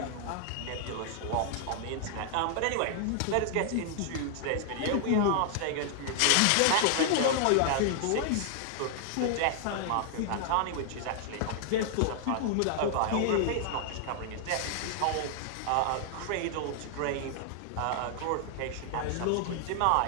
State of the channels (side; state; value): both; different; correlation 0.00